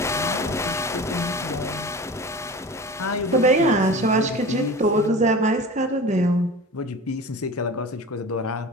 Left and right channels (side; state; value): both; normal; correlation 0.35